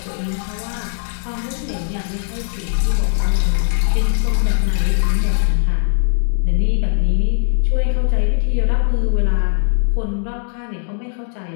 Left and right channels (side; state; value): right; silent; 62 dB below the other